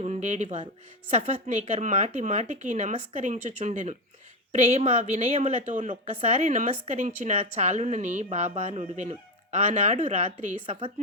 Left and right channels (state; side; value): normal; both; correlation 0.12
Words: ఉండేడివారు. సఫత్నేకర్ మాటి మాటికి నమస్కరించుచుండెను. ప్రేమ వినయములతో నొక్కసారి నమస్కరించిన చాలునని బాబా నుడివెను. ఆనాడు రాత్రి